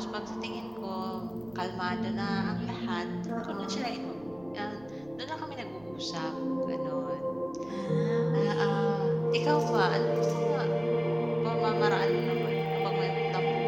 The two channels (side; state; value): right; noise; rumble, 25 dB below the sound